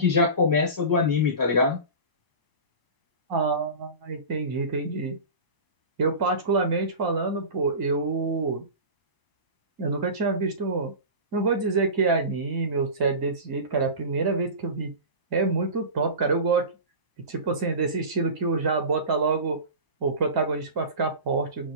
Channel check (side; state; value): left; late; 1.0 ms